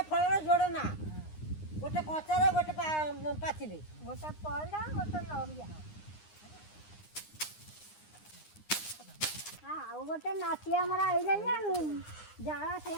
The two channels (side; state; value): right; late; 9.7 ms